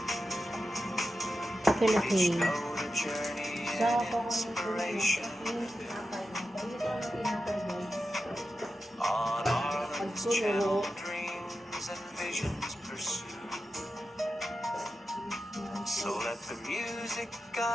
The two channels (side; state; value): both; normal; correlation 0.91